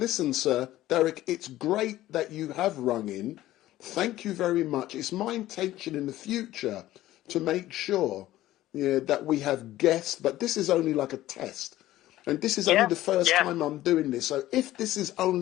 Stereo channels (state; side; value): quieter; right; 15.0 dB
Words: sir, Derek, it's great that you have rung in. Thank you very much. It's my intention in the future to make sure that we have guests, but this is only like a test. And this is only the first time I'm doing this. So if this is